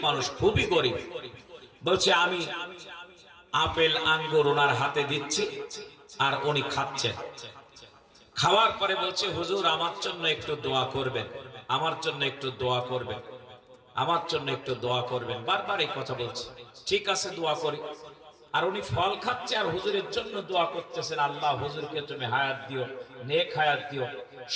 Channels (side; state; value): both; identical; correlation 1.00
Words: মানুষ, খুবই গরিব। বলছে আমি আপেল আঙ্গুর ওনার হাতে দিচ্ছি আর উনি খাচ্ছেন। খাওয়ার পরে বলছে হুজুর আমার জন্য একটু দোয়া করবেন, আমার জন্য একটু দোয়া করবেন, আমার জন্য একটু দোয়া করবেন। বারবার এই কথা বলছে। ঠিক আছে দোয়া করি। আর উনি ফল খাচ্ছে আর হুজুরের জন্য দোয়া করতেছেন, আল্লাহ হুজুরকে তুমি হায়াত দিও, নেক হায়াত দিও,